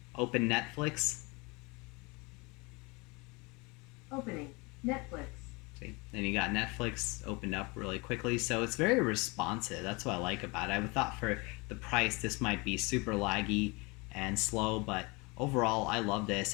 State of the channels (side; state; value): right; quieter; 27.3 dB